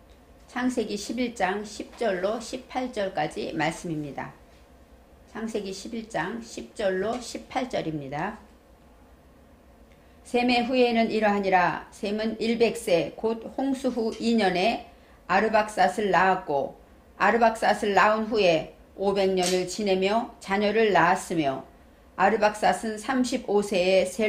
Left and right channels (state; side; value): identical; both; correlation 1.00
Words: 창세기 11장 10절로 18절까지 말씀입니다. 창세기 11장 10절로 18절입니다. 셈의 후예는 이러하니라. 셈은 100세 곧 홍수 후 2년에 아르박삿을 낳았고 아르박삿을 낳은 후에 500년을 지내며 자녀를 낳았으며 아르박삿은 35세에